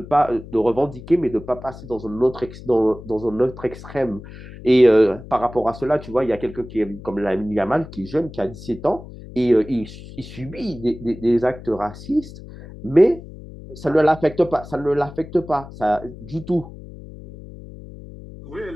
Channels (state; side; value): noise; left; hum, 15 dB below the sound